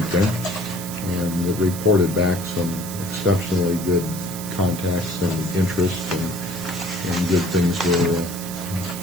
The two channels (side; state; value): right; noise; hiss, 10 dB below the sound